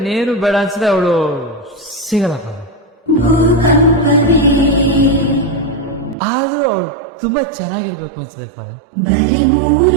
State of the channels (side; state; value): left; drops out; at 6.2 s